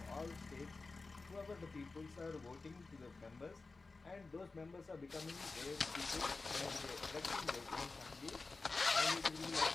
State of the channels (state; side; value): quieter; right; 3.8 dB